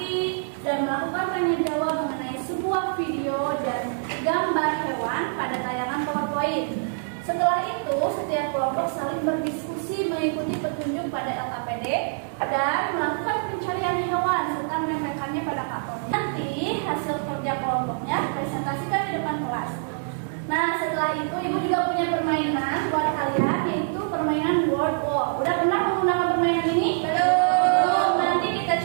dan melakukan tanya jawab mengenai sebuah video dan gambar hewan pada tayangan PowerPoint. Setelah itu, setiap kelompok saling berdiskusi mengikuti petunjuk pada LKPD dan melakukan pencarian hewan serta menempelkannya pada karton. Nanti hasil kerja kelompoknya presentasikan di depan kelas. Nah, setelah itu ibu juga punya permainan buat kalian, yaitu permainan word walk. Udah pernah menggunakan permainan ini? Belum. Nanti kita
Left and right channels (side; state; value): left; silent; digital silence